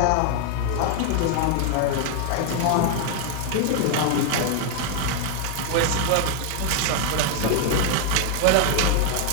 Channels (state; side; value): different; both; correlation 0.00